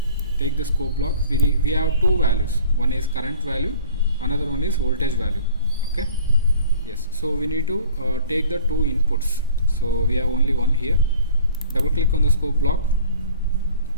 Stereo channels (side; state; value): both; inverted; correlation -0.47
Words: take the scope block. We have two values. One is current value, another one is voltage value. Okay, yes, so we need to take the two inputs. So we have only one here. Double click on the scope block.